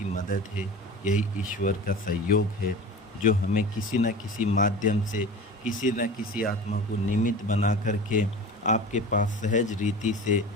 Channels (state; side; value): normal; both; correlation 0.34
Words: मदद है, यही ईश्वर का सहयोग है, जो हमें किसी न किसी माध्यम से, किसी न किसी आत्मा को निमित्त बना करके आपके पास सहज रीति से